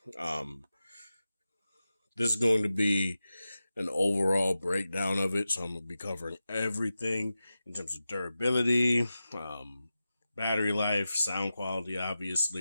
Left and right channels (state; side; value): inverted; both; correlation -0.93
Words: Um, this is going to be an overall breakdown of it, so I'm going to be covering everything in terms of durability, battery life, sound quality,